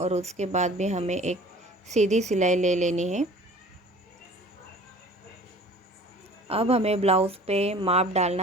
उसके बाद भी हमें एक सीधी सिलाई ले लेनी है। अब हमें ब्लाउज़ पे माप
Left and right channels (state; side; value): normal; both; correlation 0.47